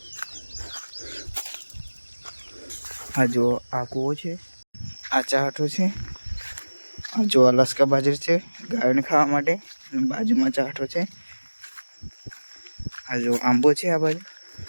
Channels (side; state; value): both; inverted; correlation -1.00